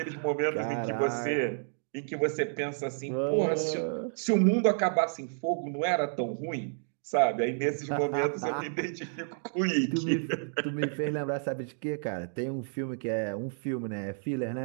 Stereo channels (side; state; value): left; silent; digital silence